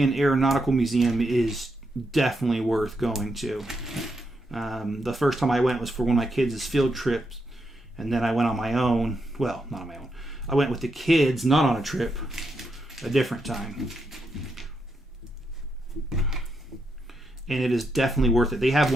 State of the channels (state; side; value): normal; both; correlation 0.82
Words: Aeronautical Museum is definitely worth going to. The first time I went was for one of my kids' field trips, and then I went on my own. Well, not on my own. I went with the kids, not on a trip, a different time. And it is definitely worth it. They have